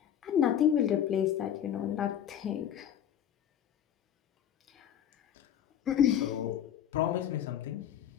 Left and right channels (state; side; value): quieter; right; 9.9 dB